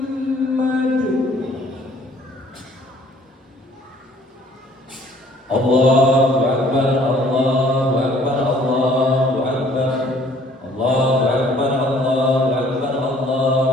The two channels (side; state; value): both; normal; correlation 0.58